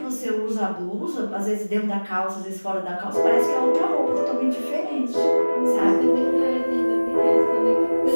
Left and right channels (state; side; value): inverted; both; correlation -1.00